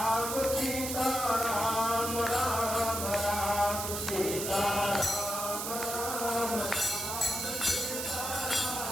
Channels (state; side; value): noise; right; hiss, 4 dB below the sound